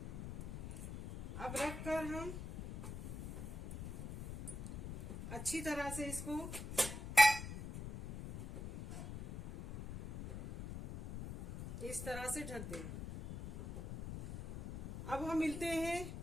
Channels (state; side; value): noise; left; rumble, 8 dB below the sound